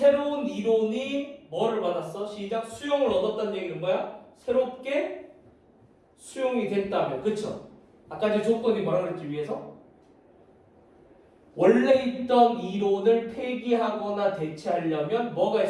이론이 뭐를 받았어? 시작. 수용을 얻었다는 얘기는 뭐야? 새롭게 수용이 됐다면. 그쵸? 아까 제 조건이 뭐라 그랬지 위에서? 원래 있던 이론을 폐기하거나 대체하려면 뭐가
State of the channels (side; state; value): both; identical; correlation 1.00